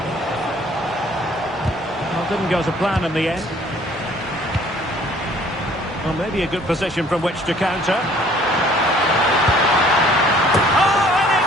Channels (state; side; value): normal; both; correlation 0.56